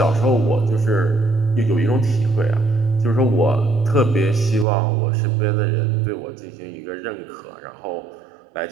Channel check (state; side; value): drops out; left; at 4.7 s